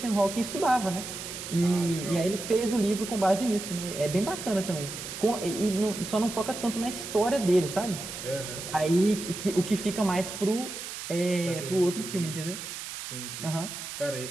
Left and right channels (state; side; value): noise; right; hiss, 8 dB below the sound